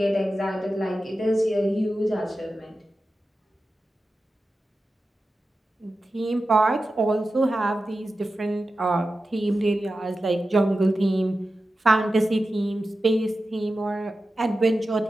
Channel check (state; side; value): normal; both; correlation 0.93